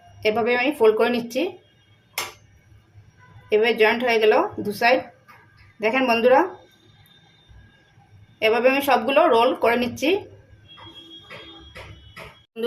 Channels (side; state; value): both; identical; correlation 1.00